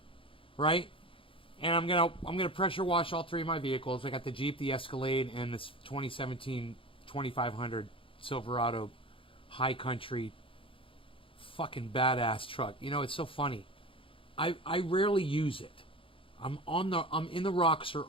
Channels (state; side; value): late; right; 0.26 ms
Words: right? And I'm gonna pressure wash all three of my vehicles. I got the Jeep, the Escalade, and this 2017 2500 Silverado High Country fucking badass truck. You know, it's so funny. I rarely use it. I'm in the Roxor